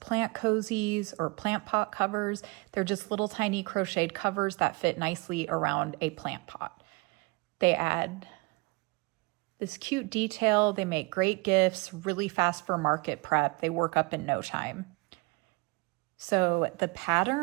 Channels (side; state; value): left; quieter; 27.4 dB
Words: cozies or plant pot covers. They're just little tiny crocheted covers that fit nicely around a plant pot. They add this cute detail. They make great gifts, really fast for market prep. They work up in no time. So the